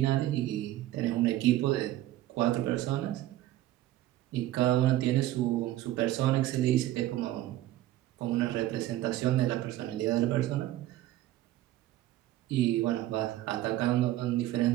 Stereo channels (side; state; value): left; quieter; 14.6 dB